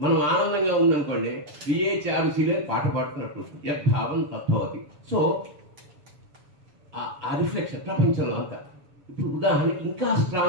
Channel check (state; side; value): late; left; 7.1 ms